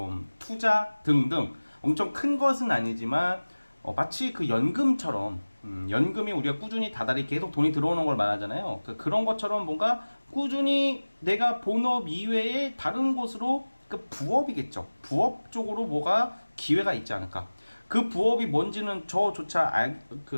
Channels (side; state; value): both; inverted; correlation -1.00